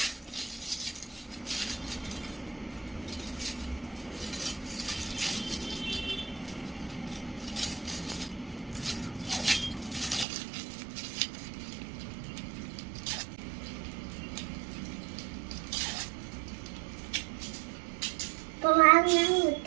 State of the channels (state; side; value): drops out; left; at 10.2 s